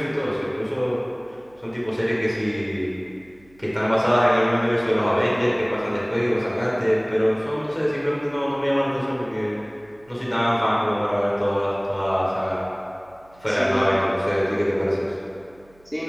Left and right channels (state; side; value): noise; right; hum, 30 dB below the sound